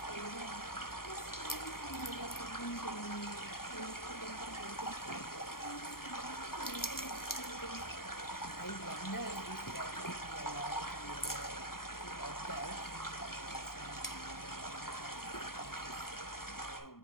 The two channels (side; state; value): right; late; 0.93 ms